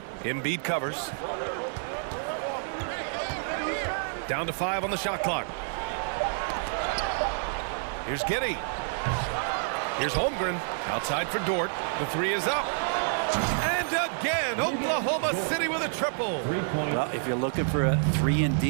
Embiid covers. Down to 5 on the shot clock. Here's Giddey. Here's Holmgren. Outside for Dort. The 3 is up. And again, Oklahoma City with a triple. Well, if you're looking for a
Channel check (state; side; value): silent; left; digital silence